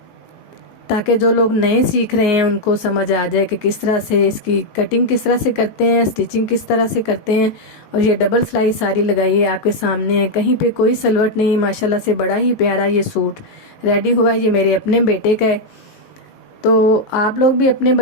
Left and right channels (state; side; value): late; right; 19 ms